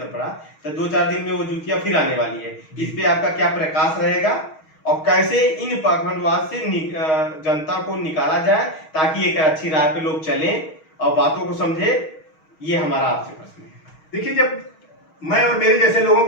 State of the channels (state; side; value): late; right; 6.3 ms